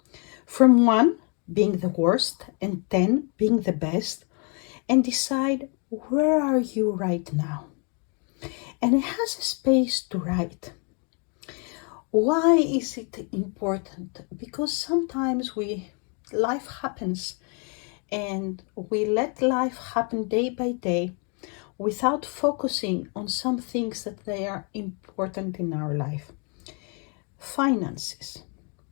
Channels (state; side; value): quieter; right; 37.2 dB